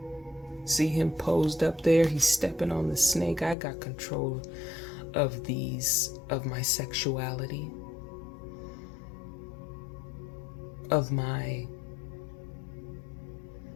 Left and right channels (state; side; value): drops out; right; at 3.6 s